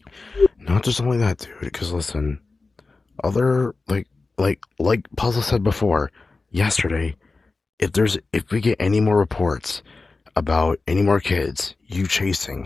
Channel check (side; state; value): right; quieter; 3.8 dB